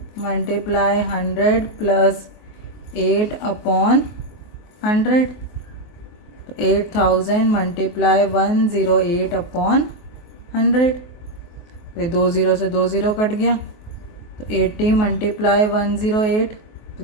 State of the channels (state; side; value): late; right; 23 ms